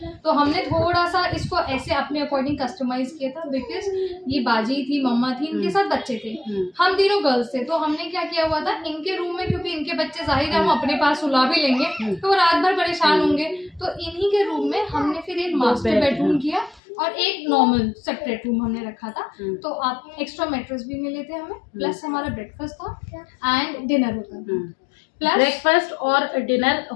तो हमने थोड़ा सा इसको ऐसे अपने अकॉर्डिंग कस्टमाइज किया था, बिकॉज ये बाजी थी, मम्मा थी, इनके साथ बच्चे थे, हम तीनों गर्ल्स थे। तो हमने क्या किया हुआ था, इनके रूम में, क्योंकि इनके बच्चे जाहिर है हम अपने पास सुला भी लेंगे तो वो रात भर परेशान होंगे, तो इन्हीं के रूम में हमने फिर एक मास्टर बेडरूम किया और एक नॉर्मल सेपरेट रूम हमने रखा था। तो आप एक्स्ट्रा मैट्रेस भी मिले थे हमें, प्लस हमारा ब्रेकफास्ट था एंड डिनर होता था। प्लस ब्रेकफास्ट और डिनर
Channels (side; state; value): right; drops out; at 16.8 s